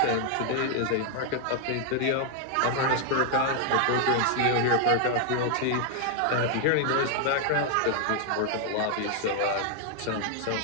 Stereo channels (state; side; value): different; both; correlation 0.00